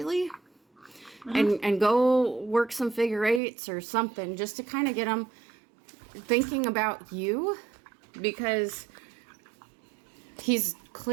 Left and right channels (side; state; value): left; drops out; at 3.4 s